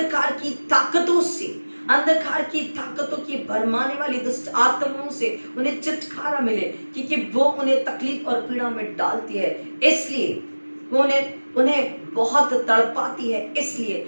की ताकतों से, अंधकार की ताकतों की भरमाने वाली दुष्ट आत्माओं से उन्हें छुटकारा मिले, क्योंकि वो उन्हें तकलीफ और पीड़ा में डालती है, इसलिए वो उन्हें बहुत तड़पाती है, इसलिए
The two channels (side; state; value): both; inverted; correlation -1.00